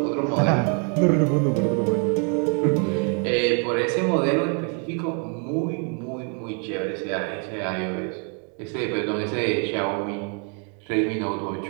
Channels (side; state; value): left; quieter; 39.5 dB